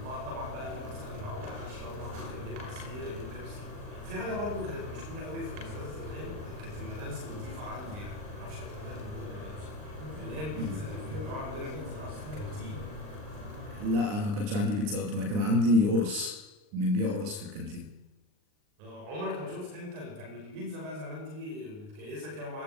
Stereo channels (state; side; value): late; left; 39 ms